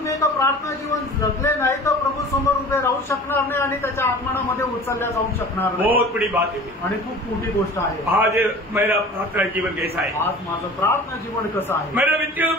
एका प्रार्थना जीवन जगले नाही तर प्रभू समोर उभे राहू शकणार नाही आणि त्याच्या आगमनामध्ये उचलल्या जाऊ शकणार नाही। बहुत बड़ी बात है। आणि खूप मोठी गोष्ट आहे। आज मेरा प्रार्थना जीवन कैसा है? आज माझं प्रार्थना जीवन कसं आहे? मेरा व्यक्तिगत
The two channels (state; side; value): normal; both; correlation 0.42